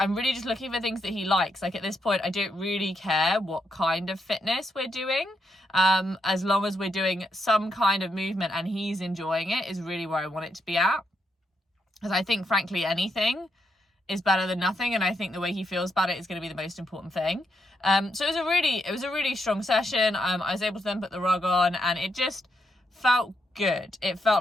really just looking for things that he likes. Like, at this point, I don't really care what kind of fitness we're doing. As long as we're doing some kind of movement and he's enjoying it is really where I want it to be at. Because I think, frankly, anything is better than nothing, and I think the way he feels about it is going to be the most important thing. So it was a really strong session. I was able to then put the rug on, and it just felt good. It felt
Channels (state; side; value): normal; both; correlation 0.80